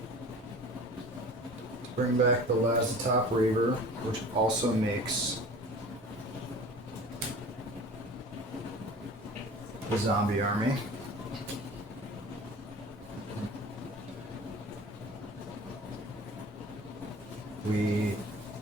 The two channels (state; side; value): normal; both; correlation 0.41